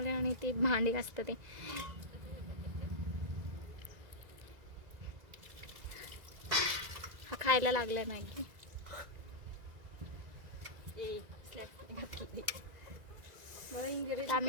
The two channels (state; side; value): late; left; 1.9 ms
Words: आणि ते भांडी असतं ते. हा खायला लागलाय मॅगी. आता